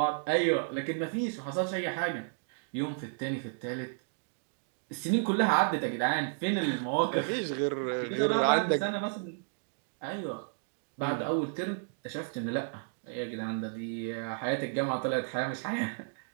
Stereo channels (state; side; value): silent; left; digital silence